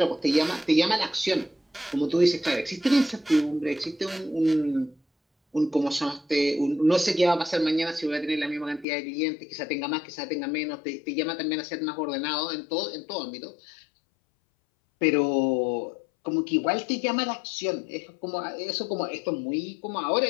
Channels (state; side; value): drops out; right; at 8.8 s